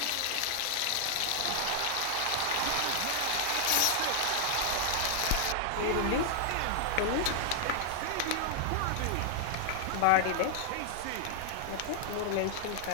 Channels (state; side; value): different; both; correlation 0.00